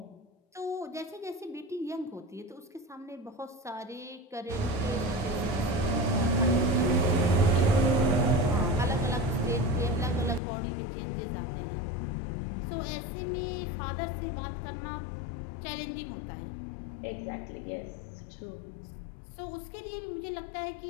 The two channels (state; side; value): drops out; right; at 10.4 s